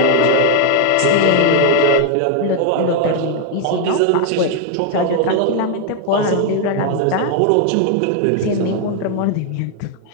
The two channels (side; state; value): both; different; correlation 0.00